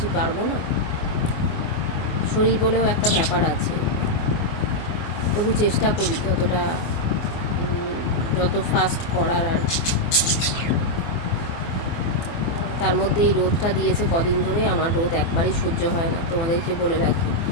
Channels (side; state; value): right; late; 23 ms